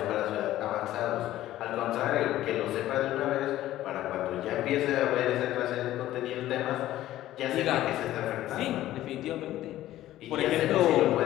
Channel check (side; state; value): right; quieter; 14.2 dB